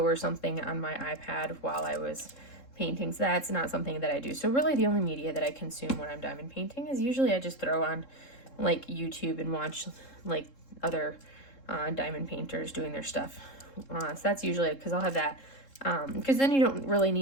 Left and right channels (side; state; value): right; late; 3.7 ms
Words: or something on my iPad while I was paintings, that's not something that I do. So really the only media that I consume when I'm diamond painting is usually I just throw on like YouTube and watch like other diamond painters doing their stuff. So that's usually, because I'll have that, because then you don't really